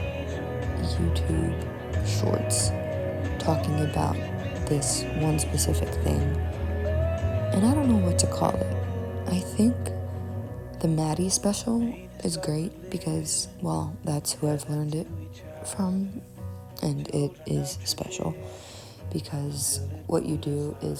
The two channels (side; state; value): both; identical; correlation 1.00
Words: YouTube shorts talking about this one specific thing. And I don't know what to call it. I think the Maddie special is great because, well, that's who I've learned it from, and it is special because what you do